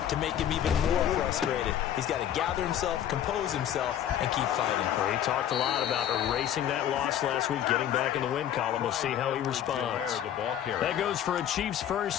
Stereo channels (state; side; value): quieter; right; 10.6 dB